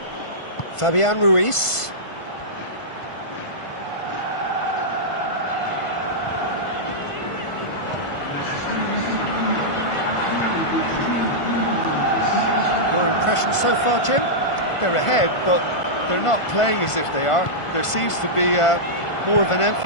Fabian Ruiz. Your impression so far, Jim? They're ahead, but they're not playing as if they are. There seems to be more of an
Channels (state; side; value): late; right; 1.5 ms